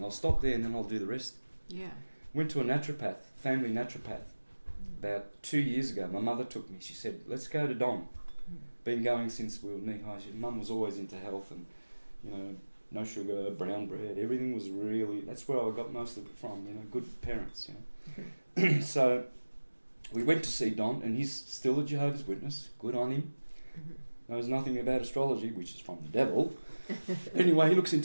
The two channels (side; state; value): both; inverted; correlation -1.00